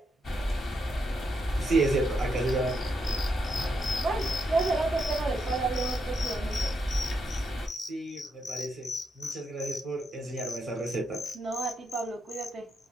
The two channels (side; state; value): both; normal; correlation 0.81